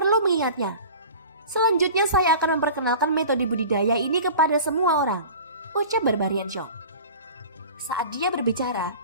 mengingatnya. Selanjutnya saya akan memperkenalkan metode budidaya ini kepada semua orang," ucap Barbarian Xiong. Saat dia berbicara,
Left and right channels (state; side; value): inverted; both; correlation -0.39